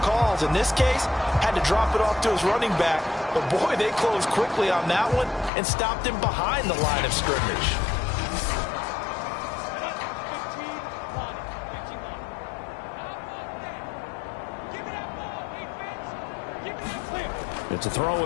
In this case, had to drop it off to his running back. But, boy, they closed quickly on that one and stopped him behind the line of scrimmage. It's a throw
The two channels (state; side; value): drops out; right; at 5.5 s